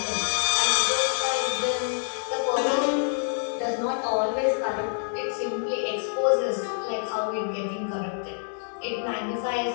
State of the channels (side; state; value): right; silent; digital silence